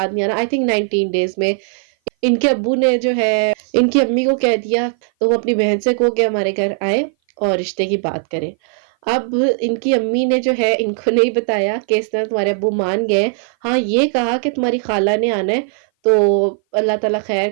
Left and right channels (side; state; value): left; silent; 58 dB below the other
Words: نہیں آ رہا، آئی تھنک 19 ڈیز میں ان کے ابو نے جو ہے ان کی امی کو کہہ دیا تو وہ اپنی بہن سے کہو کہ ہمارے گھر آئے اور رشتے کی بات کریں. اب ان کی امی نے جو ہے ان کو نہیں بتایا کہ اس طرح تمہارے ابو مان گئے. ہاں یہ کہا کہ تمہاری خالہ نے آنا ہے تو اللہ تعالیٰ خیر